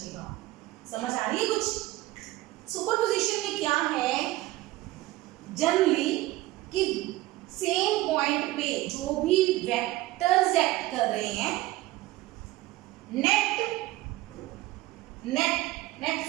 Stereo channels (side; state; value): left; quieter; 17.6 dB